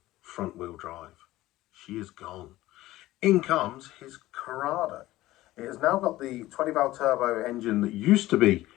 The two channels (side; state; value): right; quieter; 16.6 dB